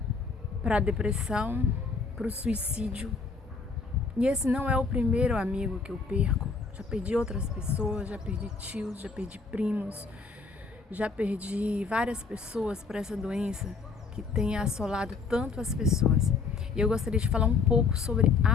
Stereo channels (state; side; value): quieter; right; 4.6 dB